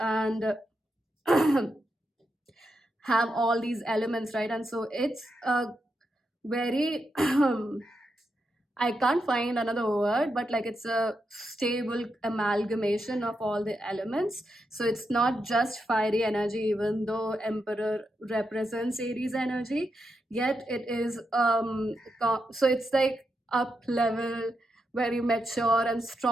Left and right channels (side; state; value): both; normal; correlation 0.85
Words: have all these elements, right? And so it's a very I can't find another word, but like it's a stable amalgamation of all the elements. So it's not just fiery energy, even though Emperor represents Aries energy, yet it is so it's like up level, very mature and